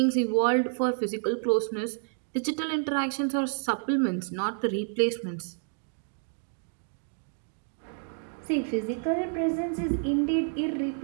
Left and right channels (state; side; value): silent; left; 58 dB below the other